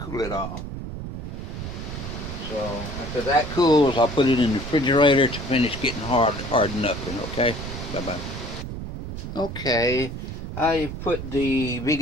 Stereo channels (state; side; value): noise; right; rumble, 7 dB below the sound